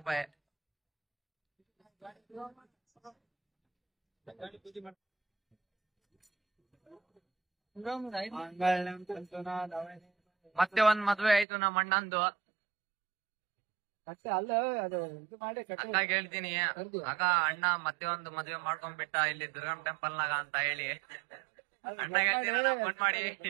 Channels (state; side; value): drops out; left; at 11.5 s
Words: ಮತ್ತೆ ಒಂದ್ ಮದ್ವೆ ಆಯ್ತು ನಮ್ಮ ಅಣ್ಣಂದು. ಅಲ್ಲ ಅದು ಇದು ಮಾಡಿ ಅಕ್ಕ ಹೇಳ್ತೀನಿ, ಆಗ ಅಣ್ಣ ಮತ್ತೆ ಒಂದು ಮದ್ವೆ ಮಾಡ್ಕೊಂಡ್ಬಿಟ್ಟ ಇಲ್ಲಿ ದುರ್ಗಮ್ ಟೆಂಪಲ್ ನಾಗ ಅಂತ ಹೇಳಿ. ಅಣ್ಣ ಹೇಳ್ತೀನಿ ಫೋನ್ ಮಾಡಿ.